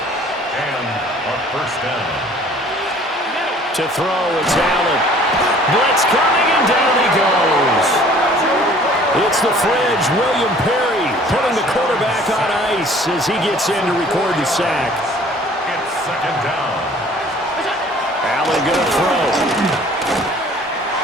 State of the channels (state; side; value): normal; both; correlation 0.52